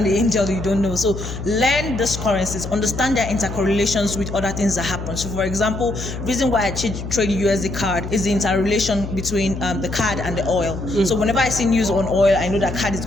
the angel you don't know. So learn these currencies, understand their intercorrelations with other things that happen. So for example, reason why I trade USD card is the interrelation between the card and the oil. So whenever I see news on oil, I know that card is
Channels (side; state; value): left; noise; hum, 8 dB below the sound